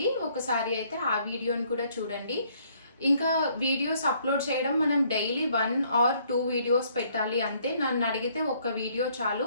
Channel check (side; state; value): both; inverted; correlation -0.65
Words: ఒకసారి అయితే ఆ వీడియోని కూడా చూడండి. ఇంకా వీడియోస్ అప్లోడ్ చేయడం మనం డైలీ 1 or 2 వీడియోస్ పెట్టాలి అంతే. నన్ను అడిగితే ఒక వీడియో